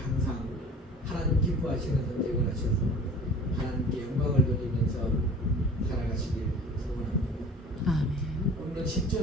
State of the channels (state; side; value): normal; both; correlation 0.45